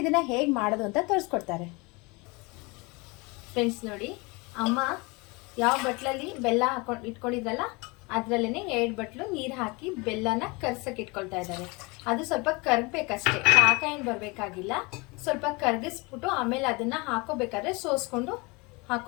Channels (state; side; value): quieter; right; 26.8 dB